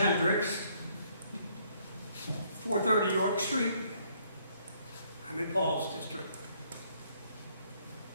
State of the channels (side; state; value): both; inverted; correlation -0.67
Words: 430 York Street. I'm in Paul's district.